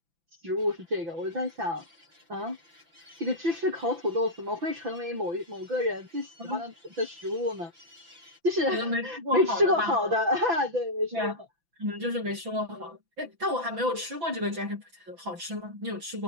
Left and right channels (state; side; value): late; left; 6.0 ms